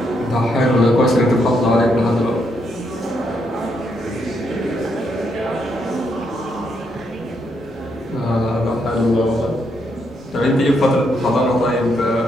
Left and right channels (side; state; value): both; normal; correlation 0.77